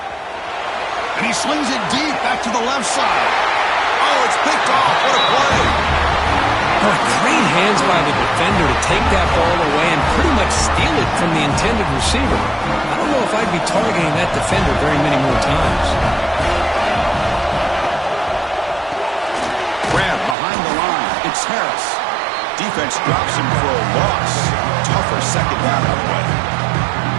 And he slings it deep back to the left side. Oh, it's picked off. What a play. Great hands by the defender to take that ball away and pretty much steal it from the intended receiver. I don't know if I'd be targeting that defender very many more times. Grab behind the line. It's Harris. Defense drops him for a loss. Tougher second down on the way.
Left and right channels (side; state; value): left; drops out; at 20.4 s